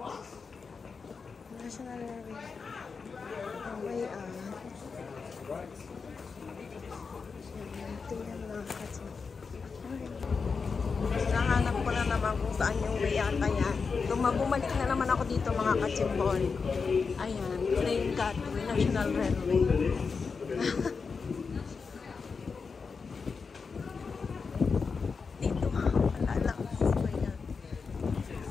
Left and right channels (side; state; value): right; quieter; 5.1 dB